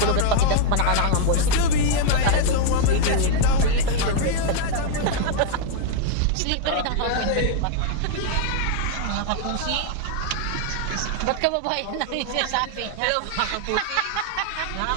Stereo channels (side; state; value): both; different; correlation 0.00